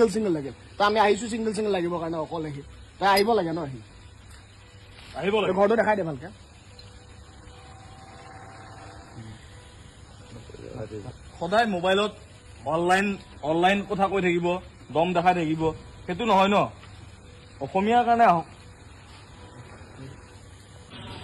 লাগে তো আমি আহিছো চিংগল লাগিবৰ কাৰণে অকল আহি তাই আহিব লাগে ন আহি আহিব লাগে ঘৰটো দেখাই দে ভালকে সদায় মোবাইলত অনলাইন কথা কৈ থাকিব দম দেখাই থাকিব সেইটো নহয় ন অসমীয়াৰ কাৰণে আহক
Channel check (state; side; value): identical; both; correlation 1.00